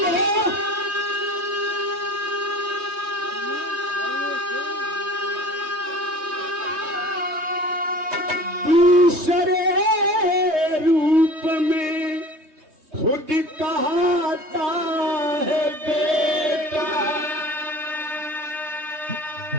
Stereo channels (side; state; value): left; late; 3.2 ms